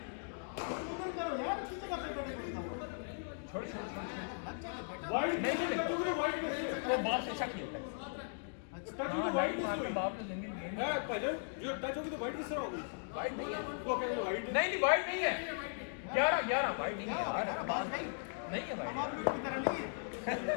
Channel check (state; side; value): silent; right; digital silence